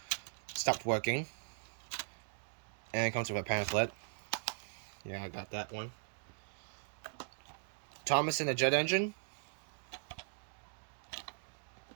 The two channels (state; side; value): silent; left; digital silence